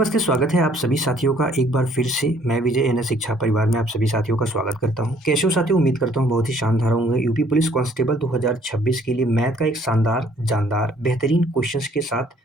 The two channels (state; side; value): normal; both; correlation 0.60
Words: स्वागत है आप सभी साथियों का एक बार फिर से। मैं विजय एनएस शिक्षा परिवार में आप सभी साथियों का स्वागत करता हूं। कैसे हो साथियों? उम्मीद करता हूं बहुत ही शानदार होंगे। यूपी पुलिस कांस्टेबल 2026 के लिए मैथ का एक शानदार, जानदार, बेहतरीन क्वेश्चंस के साथ